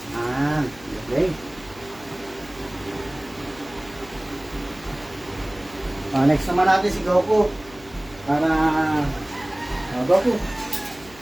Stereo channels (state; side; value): noise; left; hum, 22 dB below the sound